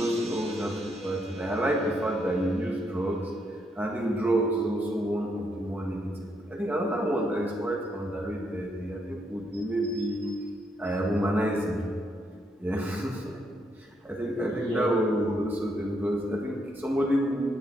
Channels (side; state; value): both; normal; correlation 0.76